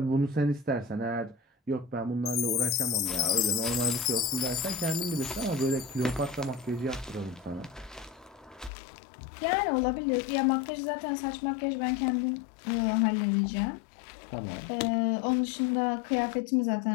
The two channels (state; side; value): drops out; right; at 8.7 s